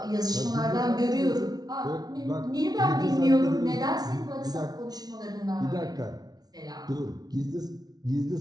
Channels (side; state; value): left; late; 0.19 ms